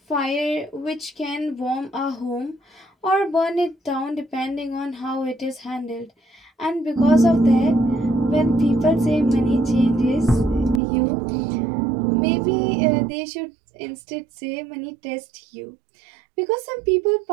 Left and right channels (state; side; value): drops out; left; at 10.8 s